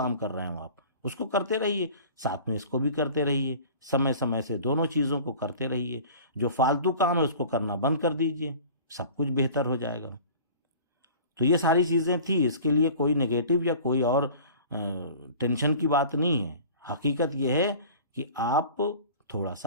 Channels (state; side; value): inverted; both; correlation -0.42